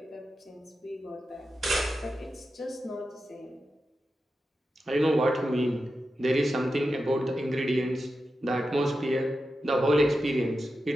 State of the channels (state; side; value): normal; both; correlation 0.90